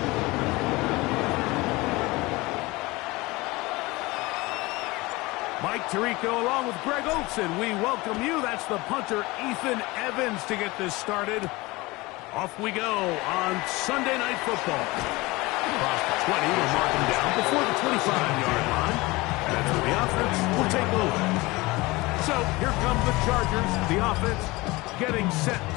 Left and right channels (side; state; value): right; quieter; 22.1 dB